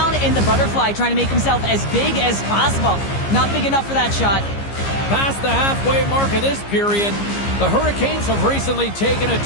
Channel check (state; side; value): late; right; 15 ms